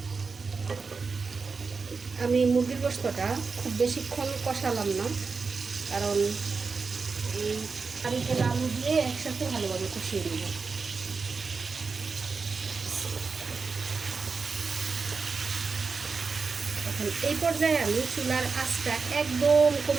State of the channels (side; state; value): left; quieter; 4.7 dB